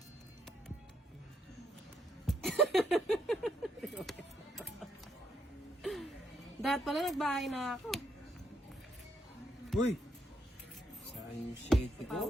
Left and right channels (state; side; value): normal; both; correlation 0.75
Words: Dahil pala nagbahay na ako. Uy! Saan yung shade ko?